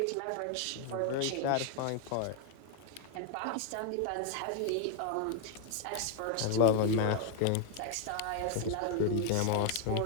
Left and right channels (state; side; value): different; both; correlation 0.00